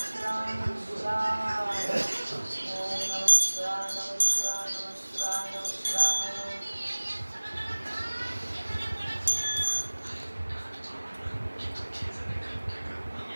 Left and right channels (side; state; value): both; inverted; correlation -1.00